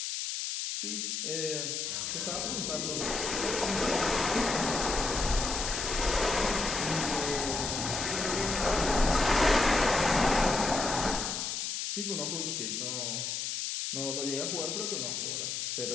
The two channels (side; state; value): left; noise; hiss, 2 dB below the sound